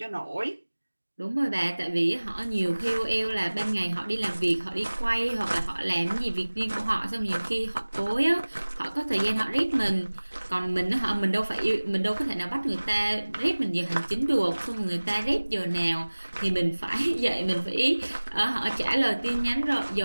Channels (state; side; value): inverted; both; correlation -1.00